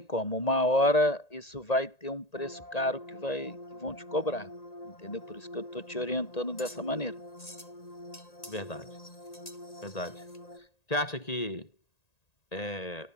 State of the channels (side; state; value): right; late; 1.9 ms